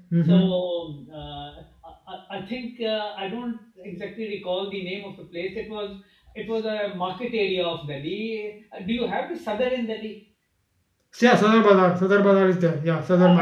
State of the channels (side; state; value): both; identical; correlation 1.00